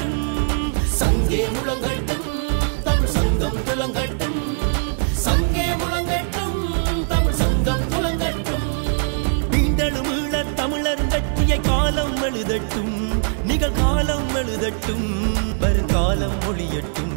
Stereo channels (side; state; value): left; silent; digital silence